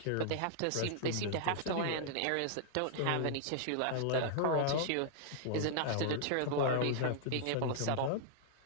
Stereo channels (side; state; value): both; different; correlation -0.01